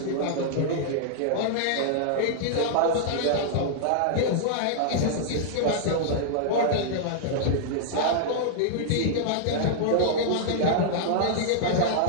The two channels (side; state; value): both; different; correlation -0.01